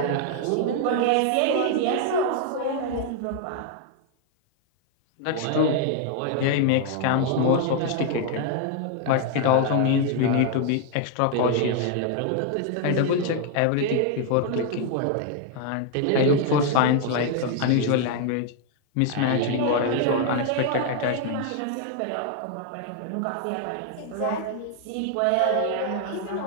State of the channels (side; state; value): both; different; correlation 0.00